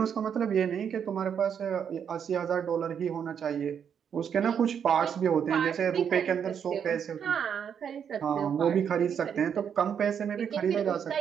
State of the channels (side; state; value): left; quieter; 7.9 dB